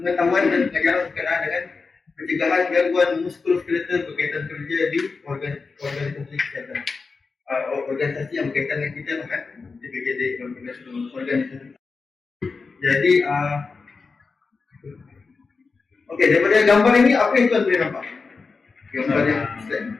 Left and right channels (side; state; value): right; quieter; 4.5 dB